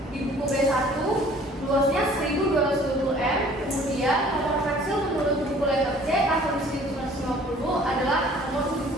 di buku B1 luasnya 1220 m. Kemudian nomor pensil menurut buku letter C tahun 1950 adalah nomor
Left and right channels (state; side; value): normal; both; correlation 0.53